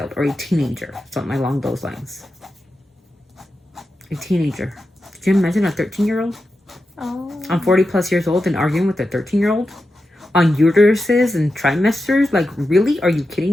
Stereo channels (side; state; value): both; normal; correlation 0.90